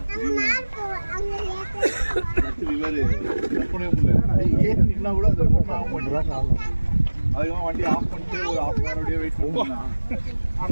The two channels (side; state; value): both; inverted; correlation -1.00